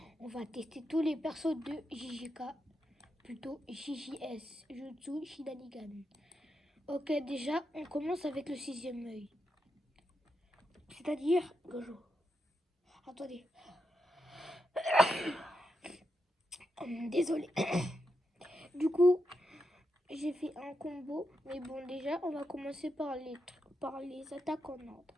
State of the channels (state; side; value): normal; both; correlation 0.85